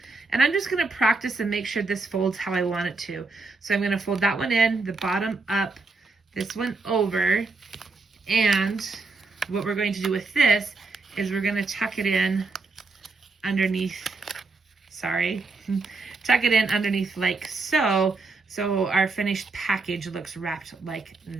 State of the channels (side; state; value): left; quieter; 3.8 dB